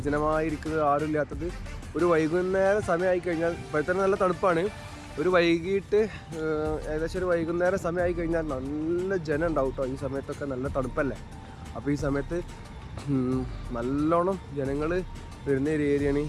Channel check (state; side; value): identical; both; correlation 1.00